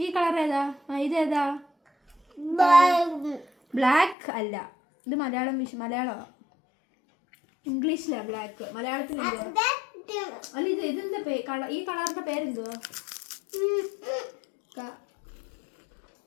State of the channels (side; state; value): right; drops out; at 4.2 s